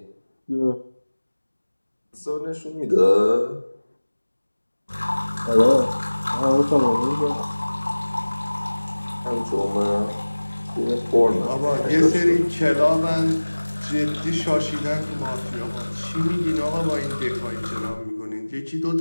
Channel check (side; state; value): both; inverted; correlation -1.00